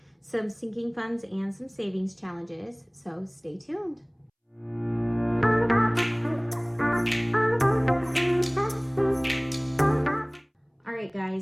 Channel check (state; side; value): identical; both; correlation 1.00